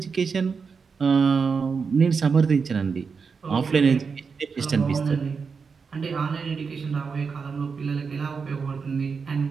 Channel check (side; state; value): left; quieter; 5.4 dB